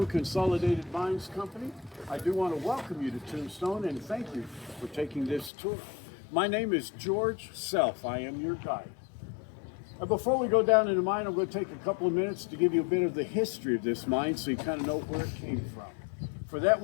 Consolidated Mines Company. I do want to welcome you to Tombstone and thank you for taking this tour. My name is George Self. I am your guide. Before we go down in the mine, I'm going to take a couple of minutes to give you a bit of the history of this mine so you kind of know where it came from. For that,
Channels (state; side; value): drops out; right; at 5.5 s